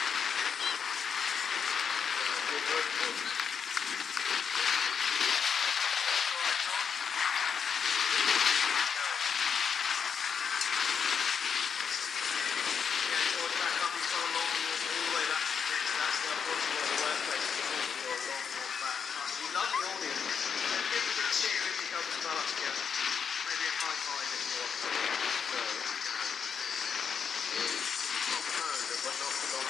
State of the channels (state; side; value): quieter; right; 6.7 dB